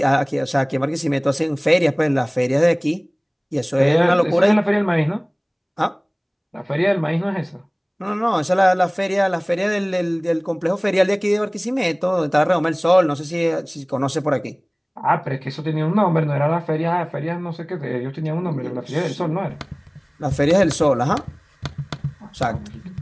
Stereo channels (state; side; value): identical; both; correlation 1.00